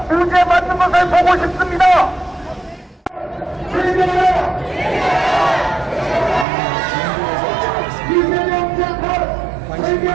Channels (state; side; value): drops out; left; at 6.5 s